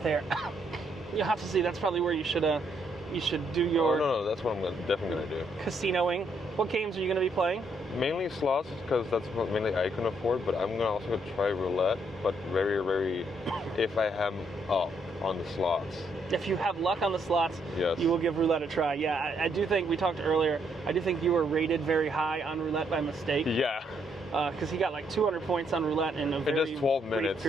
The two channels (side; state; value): both; normal; correlation 0.73